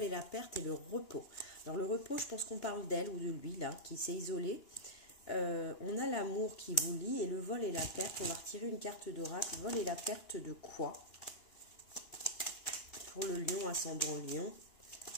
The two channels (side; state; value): right; late; 2.9 ms